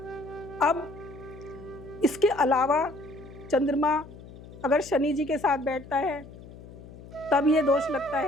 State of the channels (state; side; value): noise; left; hum, 17 dB below the sound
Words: अब इसके अलावा चंद्रमा अगर शनि जी के साथ बैठता है तब ये दोष लगता